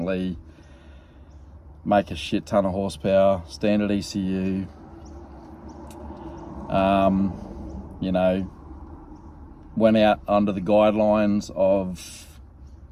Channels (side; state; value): both; identical; correlation 1.00